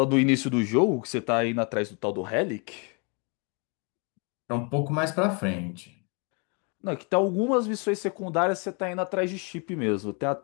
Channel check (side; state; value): right; quieter; 34.9 dB